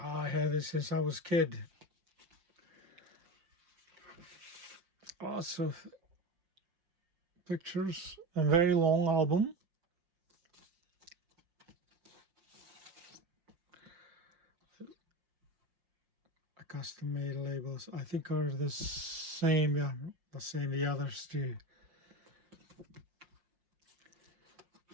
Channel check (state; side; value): late; left; 5.6 ms